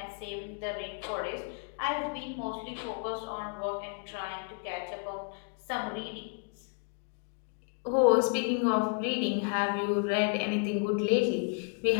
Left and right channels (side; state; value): right; quieter; 37.1 dB